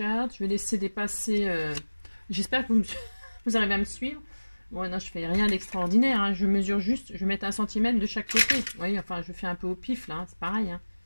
vais laisser dépasser... J'espère que vous arrivez à me suivre. Bon, non, je fais rien d'extraordinaire, hein. Je mesure juste, je vais mettre 1 cm de chaque côté. Vous voyez, enfin, je fais un peu au pif, là, hein. C'est pareil. Hein.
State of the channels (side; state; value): both; inverted; correlation -1.00